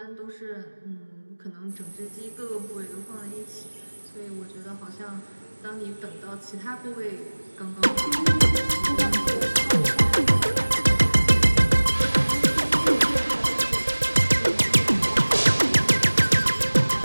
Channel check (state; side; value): inverted; both; correlation -1.00